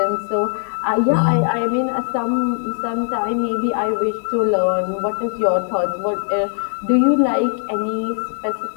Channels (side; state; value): right; silent; digital silence